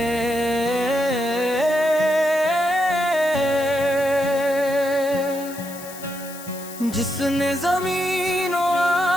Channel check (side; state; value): left; noise; hiss, 15 dB below the sound